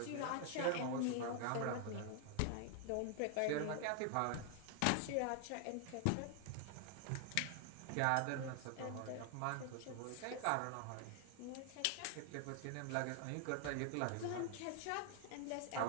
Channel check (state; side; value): different; both; correlation 0.00